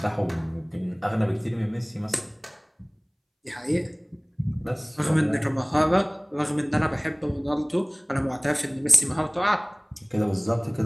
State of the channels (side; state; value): both; identical; correlation 1.00